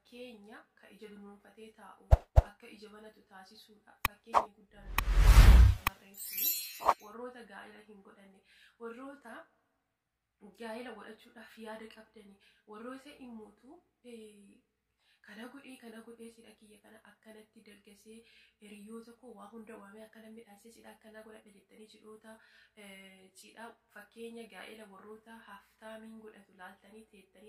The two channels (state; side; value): identical; both; correlation 1.00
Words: ka ija dunuunfatee taa'u akka ija banatu taasisuudha. Fakkeenya guddaan shamarreen suni warroota gaa'ela hin godhanne, warroota gaa'ela godhachuudhaaf yaada qabdani, warroota immoo kana godhee sidha kiyya kana akkanatti dargasee hiriyoota koo waa hunda waamee akkana midhaasee sidha akkana godhadha jettanii cidhoota cidha fakkeenya gaa'ela warroota haftaamiin godhatu laaltanii